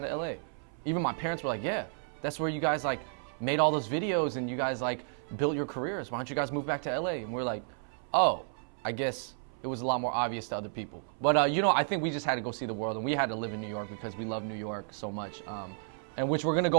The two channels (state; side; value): silent; left; 56 dB below the other